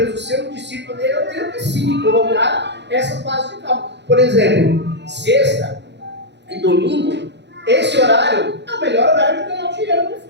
ser um discípulo dele, eu tenho que sim colocar essa base de cálculo. Por exemplo, sexta e domingo, esse horário é o melhor horário de ganhar dinheiro no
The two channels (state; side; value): late; left; 0.51 ms